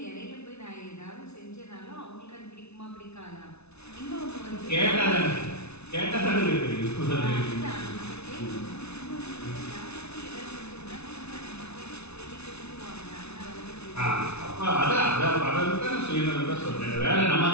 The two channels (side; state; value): right; late; 0.81 ms